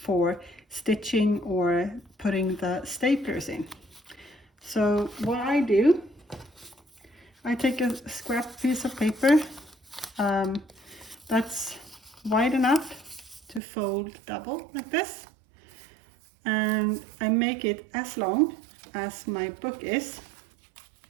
stitching or putting the staplers in. So what I do, I take a scrap piece of paper that's wide enough to fold double like this, and I make it as long as my book is,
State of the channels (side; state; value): left; drops out; at 13.6 s